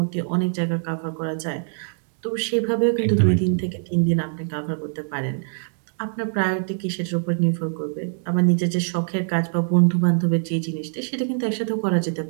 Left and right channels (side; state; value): left; silent; digital silence